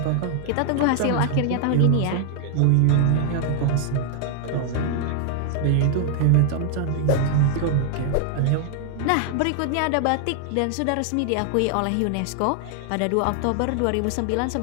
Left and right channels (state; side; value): different; both; correlation 0.00